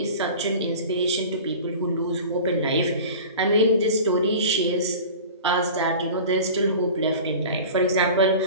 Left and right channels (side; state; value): both; inverted; correlation -0.37